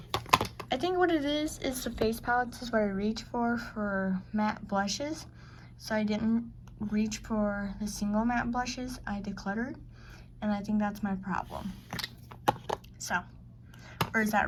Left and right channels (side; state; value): both; identical; correlation 1.00